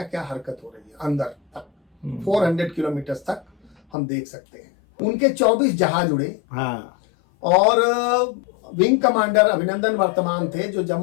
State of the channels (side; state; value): right; drops out; at 3.8 s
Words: क्या हरकत हो रही है अंदर तक। 400 किलोमीटर तक हम देख सकते हैं। उनके 24 जहाज उड़े। हाँ। और विंग कमांडर अभिनंदन वर्तमान थे जो